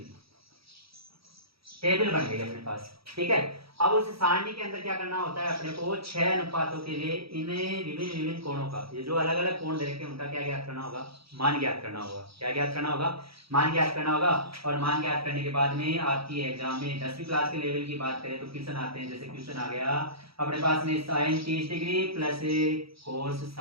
टेबल बन गई अपने पास। ठीक है, अब उस सारणी के अंदर क्या करना होता है अपने को, 6 अनुपातों के लिए इन्हें विभिन्न कोणों का, ये जो अलग अलग कोण दे रखे हैं उनका क्या ज्ञात करना होगा, मान ज्ञात करना होगा। क्या ज्ञात करना होगा, मान ज्ञात करना होगा। और मान ज्ञात करने के बाद में आपकी एग्जाम में 10वीं क्लास के लेवल की बात करें तो क्वेश्चन आते हैं, जैसे क्वेश्चन आ गया अपने पास में sin 30 degree plus cos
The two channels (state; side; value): late; left; 0.76 ms